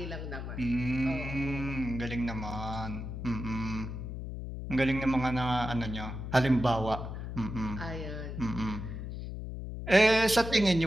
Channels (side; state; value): left; noise; hum, 7 dB below the sound